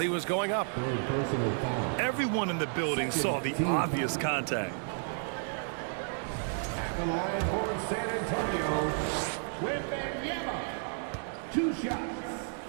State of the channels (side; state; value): left; silent; 55 dB below the other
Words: was going up. Everyone in the building saw the obvious contact. At the line for San Antonio, Wembanyama. 2 shots.